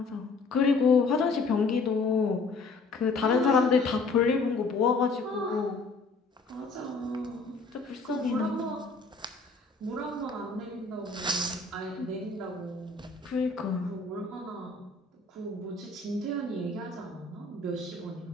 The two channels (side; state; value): right; quieter; 3.8 dB